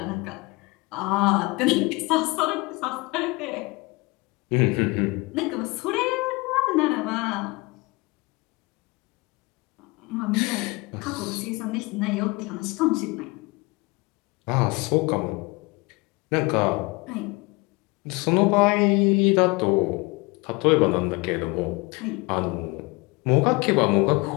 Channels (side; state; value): right; quieter; 25.3 dB